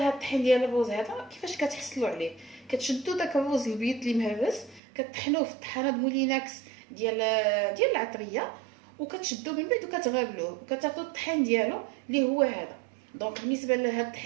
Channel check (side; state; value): left; drops out; at 4.8 s